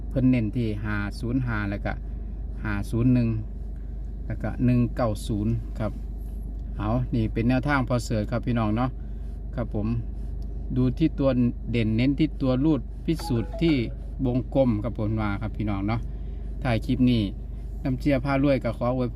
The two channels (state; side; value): identical; both; correlation 1.00